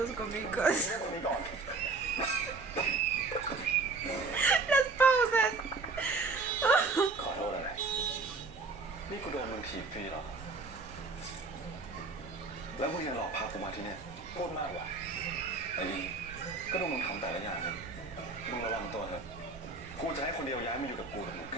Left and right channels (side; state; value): left; quieter; 3.9 dB